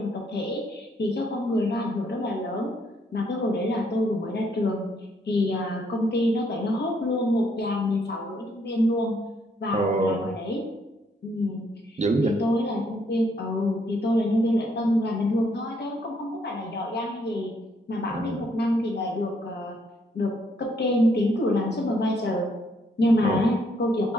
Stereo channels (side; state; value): both; normal; correlation 0.71